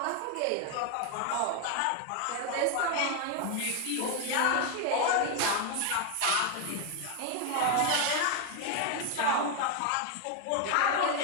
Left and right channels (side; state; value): both; different; correlation 0.01